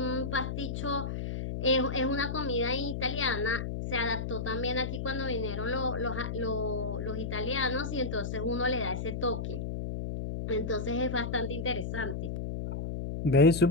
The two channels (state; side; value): noise; left; hum, 4 dB below the sound